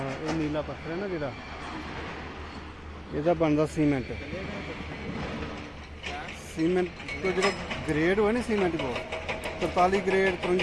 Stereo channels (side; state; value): both; identical; correlation 1.00